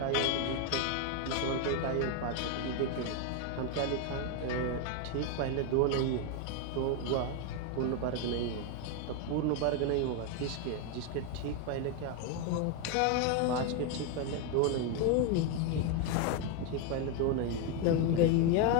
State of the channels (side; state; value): both; different; correlation 0.01